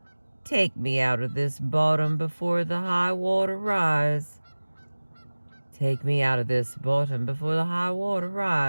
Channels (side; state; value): both; inverted; correlation -1.00